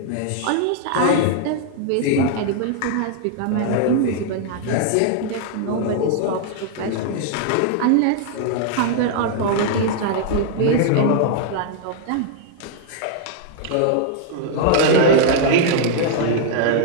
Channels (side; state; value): both; different; correlation -0.01